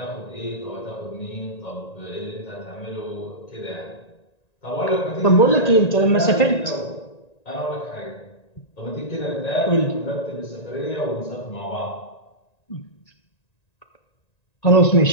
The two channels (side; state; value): right; late; 1.9 ms